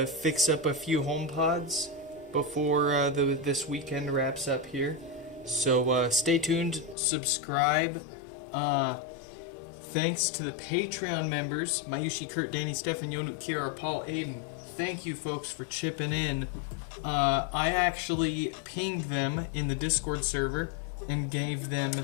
fix up a few HomePods before this weekend wraps up here. So stay tuned, subscribe. Thanks to the Patreon members, Mayushi, Kurt, Danny, Stefan, Yonu, Kiara, Paul, Aiden. Thank you folks for chipping in. I actually pinged them in the Discord server and gave them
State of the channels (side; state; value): right; drops out; at 7.0 s